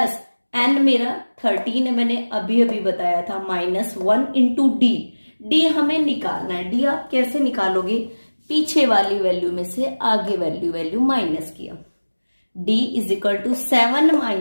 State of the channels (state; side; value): inverted; both; correlation -1.00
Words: n मेरा 13 है, मैंने अभी अभी बताया था, माइनस 1 इंटू डी। डी हमें निकालना है। डी आप कैसे निकालोगे, पीछे वाली वैल्यू में से आगे वैल्यू माइनस किया। d is equal to 7